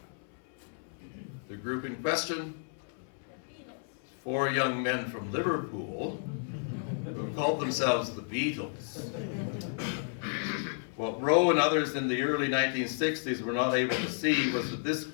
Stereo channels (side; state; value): right; silent; 56 dB below the other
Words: The group in question, 4 young men from Liverpool who called themselves the Beatles. What Rowe and others in the early 1960s were not able to see was